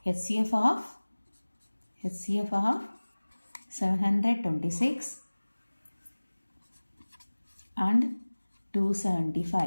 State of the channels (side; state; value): both; inverted; correlation -1.00